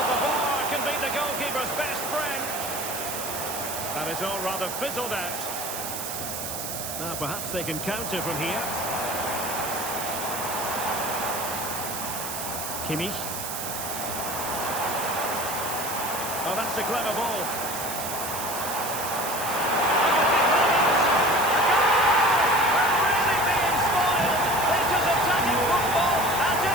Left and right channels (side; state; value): right; noise; hiss, 5 dB below the sound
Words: the bar can be the goalkeeper's best friend. And it's all rather fizzled out. Now perhaps they can counter from here. Kimmich. Oh, that's a clever ball.